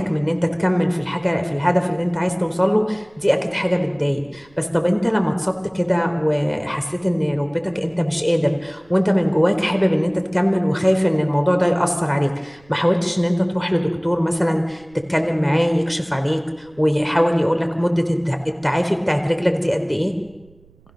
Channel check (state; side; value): noise; right; rumble, 29 dB below the sound